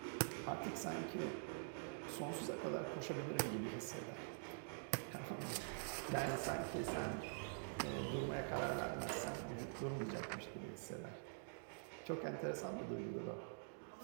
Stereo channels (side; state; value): left; silent; digital silence